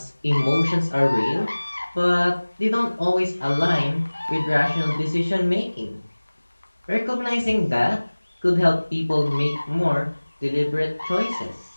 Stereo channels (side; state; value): both; inverted; correlation -1.00